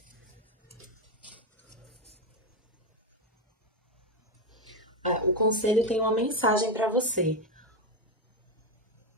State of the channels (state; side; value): normal; both; correlation 0.10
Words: O conselho tem uma mensagem para você.